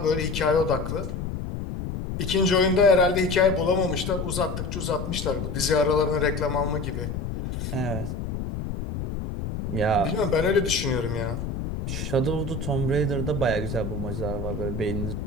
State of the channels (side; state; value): left; noise; rumble, 5 dB below the sound